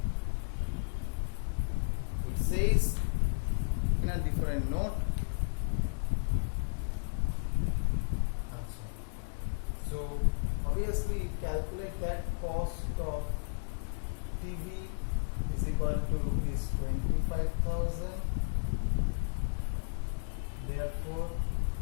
It says in a different note. So obviously you calculate that cost of TV is equal to rupees 25,000. Therefore,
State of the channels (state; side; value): silent; right; 55 dB below the other